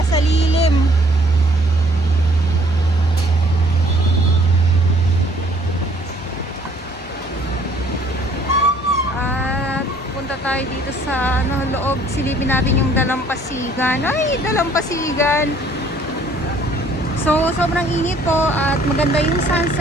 sa lilim. At punta tayo dito sa loob, silipin natin yung Dalampasigan. Ay, Dalampasigan! So, sobrang init po at maganda yung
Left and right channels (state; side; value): normal; both; correlation 0.59